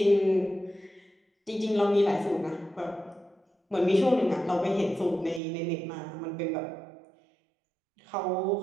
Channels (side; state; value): left; drops out; at 5.4 s